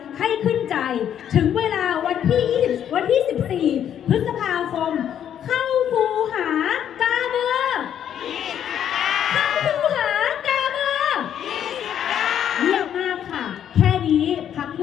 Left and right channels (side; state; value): right; quieter; 9.7 dB